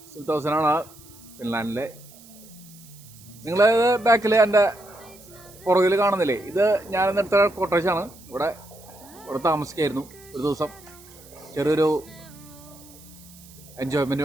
സുൽത്താനാണ് ഫിൻലാൻഡിലെ. നിങ്ങൾ ബാക്കിൽ എൻ്റെ പുറകിൽ കാണുന്നില്ലേ, ഇത് ഞാനിന്നെടുത്ത കോട്ടേജാണ്. ഇവിടെ താമസിക്കായിരുന്നു ഒരു ദിവസം. ചെറിയൊരു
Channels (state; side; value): noise; right; hiss, 22 dB below the sound